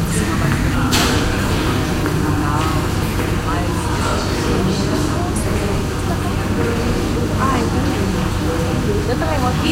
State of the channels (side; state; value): both; identical; correlation 1.00